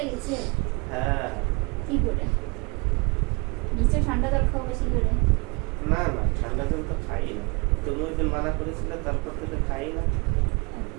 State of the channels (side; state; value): left; quieter; 30.6 dB